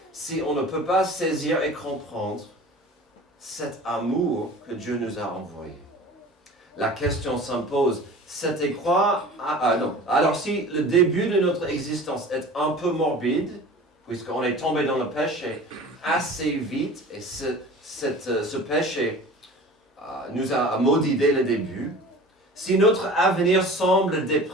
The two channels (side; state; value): both; normal; correlation 0.40